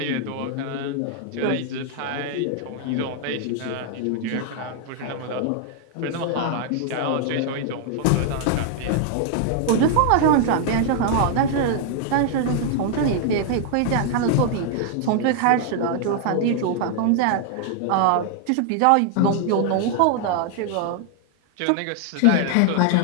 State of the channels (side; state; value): both; different; correlation 0.00